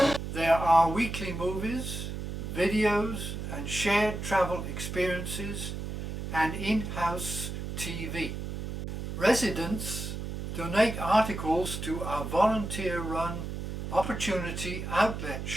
There are weekly movies, videos and shared travel experiences and in-house TV. Residents donate articles to our volunteer-run Opportunity Outlet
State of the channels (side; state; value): right; noise; hum, 5 dB below the sound